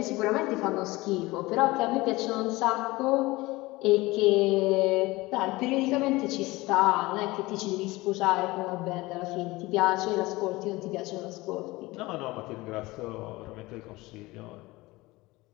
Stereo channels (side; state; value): right; quieter; 20.8 dB